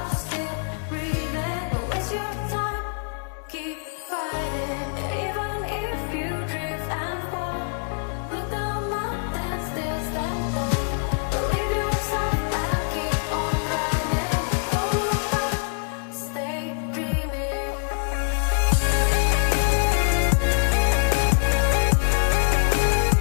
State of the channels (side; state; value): right; silent; 62 dB below the other